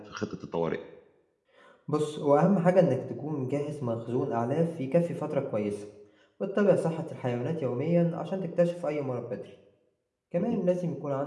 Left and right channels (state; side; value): identical; both; correlation 1.00